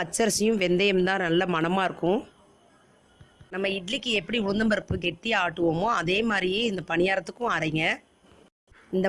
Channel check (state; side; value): identical; both; correlation 1.00